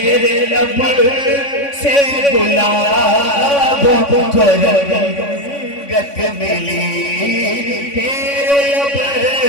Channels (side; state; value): right; late; 3.5 ms